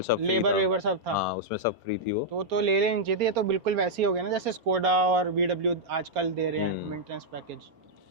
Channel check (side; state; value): left; late; 4.3 ms